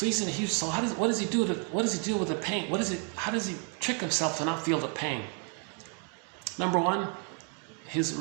he's in a huge. So what does he do with the pain? How does he trick himself to not feel the pain? Number one, his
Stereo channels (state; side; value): quieter; left; 34.6 dB